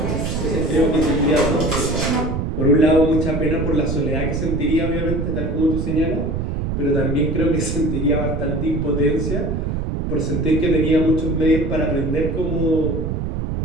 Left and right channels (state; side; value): noise; right; rumble, 2 dB below the sound